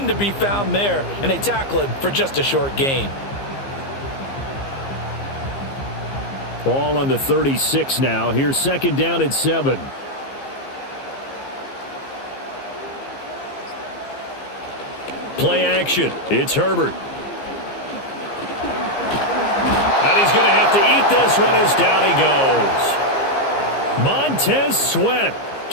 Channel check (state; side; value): late; right; 15 ms